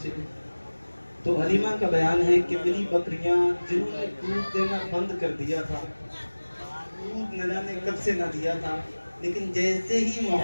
تو حلیمہ کا بیان ہے کہ میری بکریاں جنہوں نے دودھ دینا بند کر دیا تھا، دودھ نہ جانے کب سے نہ دیا تھا، لیکن جیسے ہی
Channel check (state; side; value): inverted; both; correlation -1.00